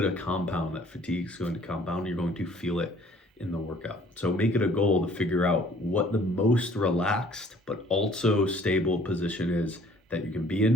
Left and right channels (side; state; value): both; normal; correlation 0.56